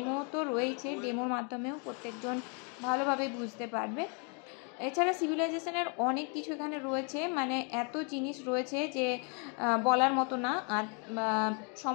তো রয়েছে, ডেমোর মাধ্যমেও প্রত্যেকজন ভালোভাবে বুঝতে পারবে। এছাড়া সিভিলাইজেশনের অনেক কিছু এখানে রয়েছে, মানে এত জিনিস রয়েছে যে বলার মতো না, আর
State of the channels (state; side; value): quieter; right; 37.7 dB